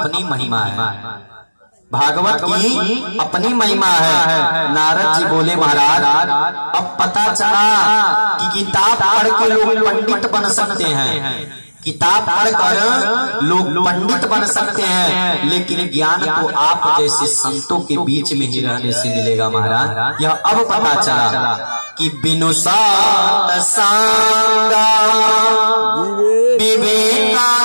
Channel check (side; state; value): both; inverted; correlation -1.00